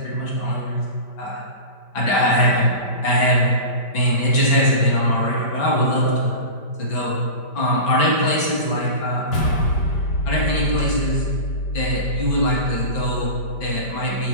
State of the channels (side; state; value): right; late; 5.1 ms